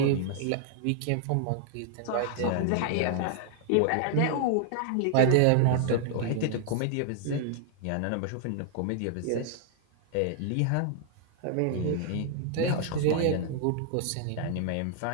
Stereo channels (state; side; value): different; both; correlation 0.00